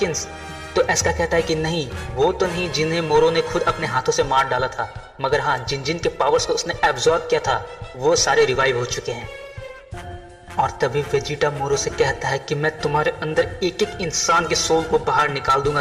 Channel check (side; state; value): both; identical; correlation 1.00